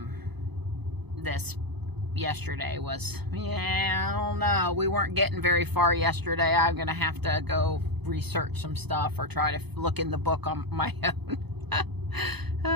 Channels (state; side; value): late; left; 0.98 ms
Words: this yesterday was, yeah, I don't know. We weren't getting very far yesterday. I'm going to have to go research some stuff or try to look in the book on my own.